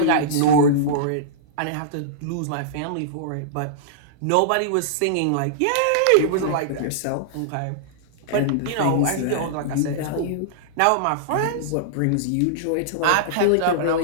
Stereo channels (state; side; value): different; both; correlation -0.02